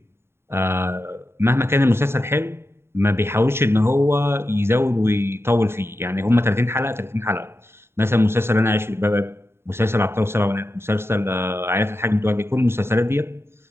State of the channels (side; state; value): left; late; 0.12 ms